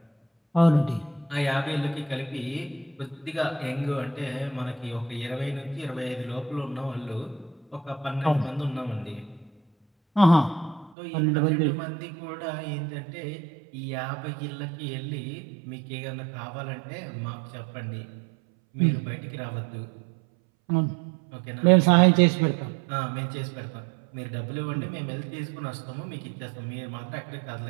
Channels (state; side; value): drops out; left; at 10.9 s